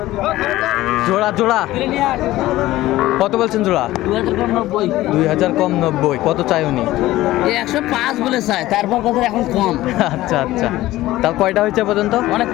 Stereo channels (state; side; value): quieter; right; 16.3 dB